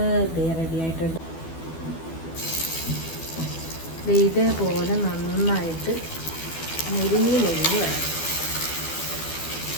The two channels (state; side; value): late; right; 12 ms